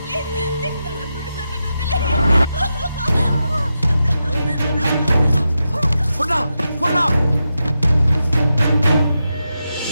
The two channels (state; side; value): inverted; both; correlation -0.88